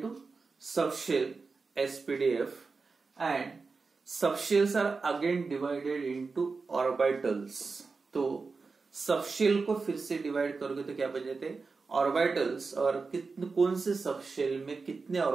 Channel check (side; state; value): left; quieter; 4.4 dB